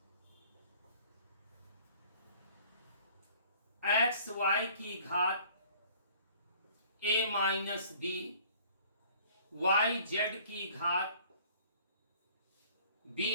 एक्स वाई की घात a minus b Y Z की घात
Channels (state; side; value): inverted; both; correlation -0.53